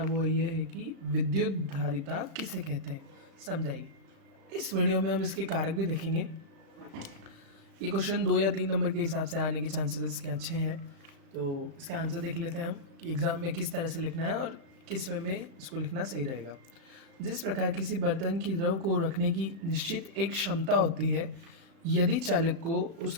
ये है कि विद्युत धारिता किसे कहते हैं, समझाइए। इस वीडियो में हम इसके कारक भी देखेंगे। ये क्वेश्चन 2 या 3 नंबर के हिसाब से आने के चांसेस इसके अच्छे हैं, तो इसका आंसर देख लेते हैं हम कि एग्ज़ाम में किस तरह से लिखना है और किस वे में इसको लिखना सही रहेगा। जिस प्रकार किसी बर्तन की द्रव को रखने की निश्चित एक क्षमता होती है, यदि चालक को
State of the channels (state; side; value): late; left; 36 ms